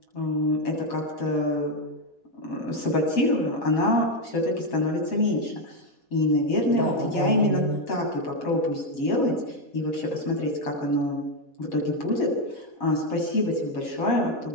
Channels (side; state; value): right; late; 4.1 ms